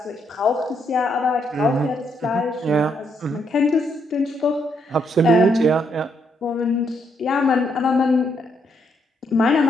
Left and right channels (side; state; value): both; normal; correlation 0.76